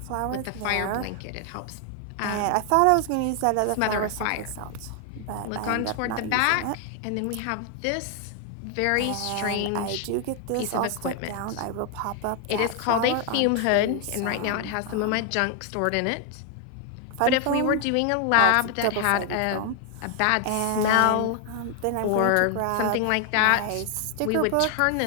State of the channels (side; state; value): both; different; correlation 0.00